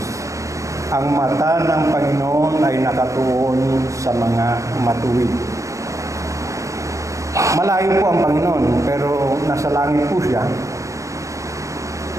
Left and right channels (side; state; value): left; late; 0.15 ms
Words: Ang mata ng Panginoon ay nakatuon sa mga matuwid. Malayo po ang Panginoon, pero nasa langit po siya.